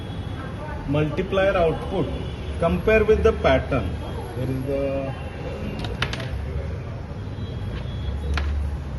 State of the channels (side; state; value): both; identical; correlation 1.00